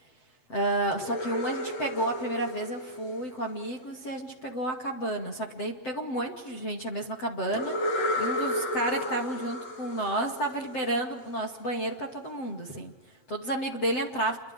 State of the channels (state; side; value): late; right; 7.8 ms